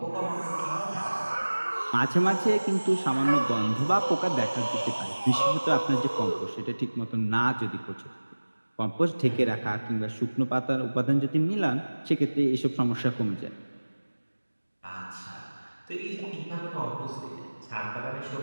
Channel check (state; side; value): inverted; both; correlation -1.00